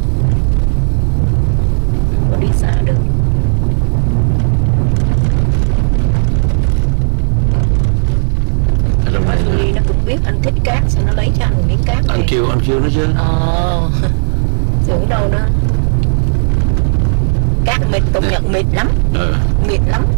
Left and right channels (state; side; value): silent; left; digital silence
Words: có đi xa được. Đi nó cũng biết anh thích cát, sao nó lấy cho anh miếng cát này. Anh kêu nó chứ. Tưởng đâu nữa. Cát mịt, công nhận mịt lắm. Mịt lắm.